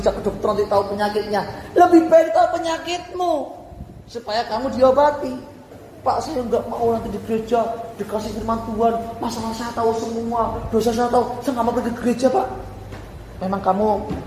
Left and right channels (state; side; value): identical; both; correlation 1.00